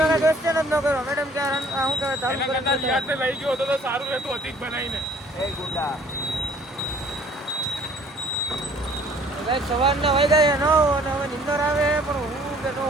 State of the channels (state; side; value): normal; both; correlation 0.56